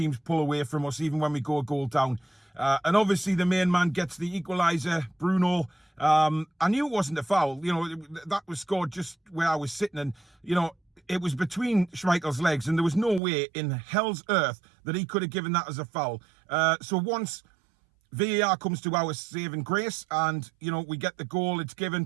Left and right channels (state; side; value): drops out; left; at 13.2 s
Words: pull away from us, even when we go a goal down. And obviously the main man gets the equaliser, Bruno. I knew it wasn't a foul. That was scored just where I was sitting. And, it was between Schmeichel's legs. And there was no way in hell's earth that he could have given that as a foul. So once VAR comes to our saving grace and, we get the goal, it's given.